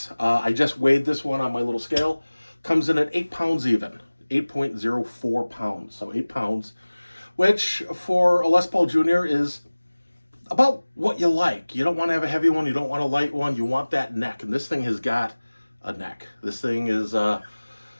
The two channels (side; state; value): both; inverted; correlation -1.00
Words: I just weighed this one on my little scale. Comes in at 8 pounds even, 8.04 pounds. So 8 pounds, which for a Les Paul Jr. is about what you like. You don't want to have a heavy one. You don't want a light one. You want that neck. And this thing has got a neck. This thing is a